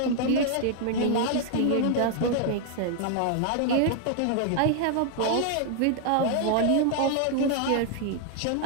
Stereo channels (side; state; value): both; different; correlation 0.00